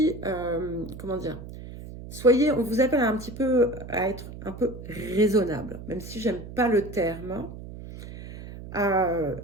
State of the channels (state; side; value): noise; right; hum, 12 dB below the sound